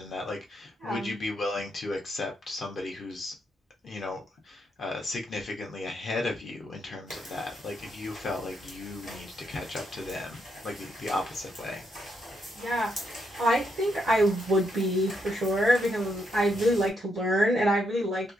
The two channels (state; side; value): normal; both; correlation 0.78